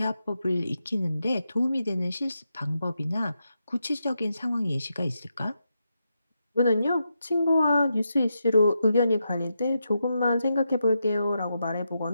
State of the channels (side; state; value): both; inverted; correlation -0.85